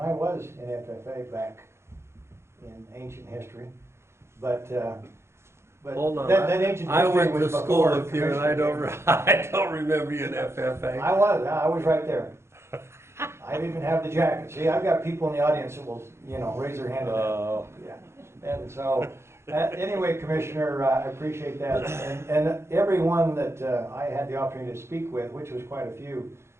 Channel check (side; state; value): left; late; 0.13 ms